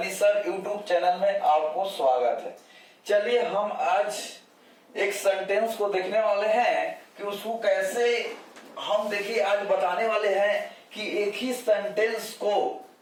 sir YouTube channel में आपको स्वागत है। चलिए हम आज एक सेंटेंस को देखने वाले हैं कि उसको कैसे हम देखिए आज बताने वाले हैं कि एक ही सेंटेंस को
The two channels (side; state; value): both; identical; correlation 1.00